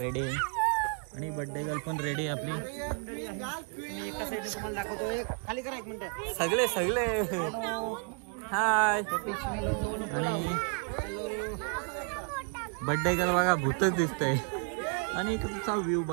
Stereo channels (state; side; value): quieter; left; 36.0 dB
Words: आहे. आणि बर्थडे गर्ल पण रेडी आहे आपली. एका साईडने तुम्हाला दाखवतो. खाली करा एक मिनिट. सगळे हाय. आणि बर्थडे गर्ल बघा भूतच दिसतंय. आणि इकडचा व्ह्यू